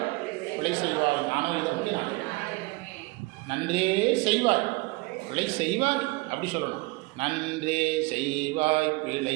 பிழை செய்வாய். நானும் இதை வந்து நான் நன்றே செய்வாய் பிழை செய்வாய் அப்படி சொல்லணும். நன்றே செய்வாய்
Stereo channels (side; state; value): left; quieter; 24.8 dB